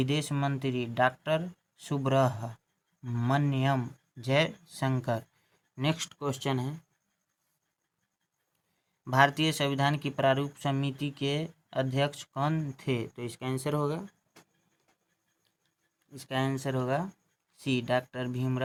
मंत्री doctor Subrahmanyam Jaishankar. Next question है, भारतीय संविधान की प्रारूप समिति के अध्यक्ष कौन थे? तो इसका आंसर होगा सी, डॉक्टर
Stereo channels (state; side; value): identical; both; correlation 1.00